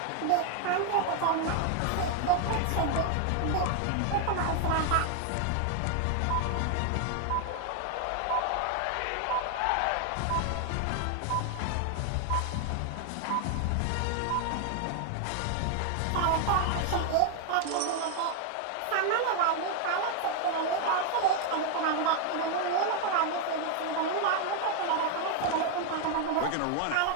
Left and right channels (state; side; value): different; both; correlation 0.00